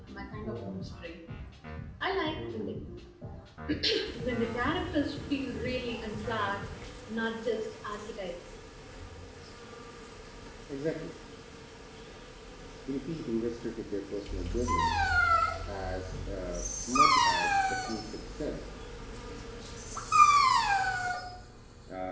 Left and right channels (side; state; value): both; identical; correlation 1.00